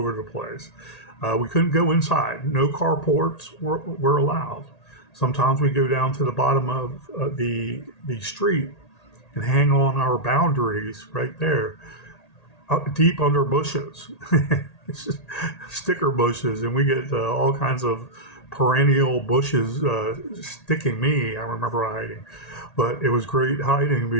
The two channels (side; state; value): right; late; 1.8 ms